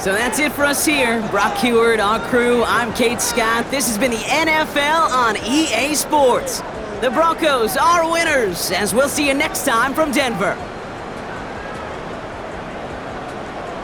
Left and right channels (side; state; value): both; identical; correlation 1.00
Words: that's it for us here. Brock Heward, our crew, I'm Kate Scott. This has been the NFL on EA Sports. The Broncos are winners, as we'll see you next time from Denver.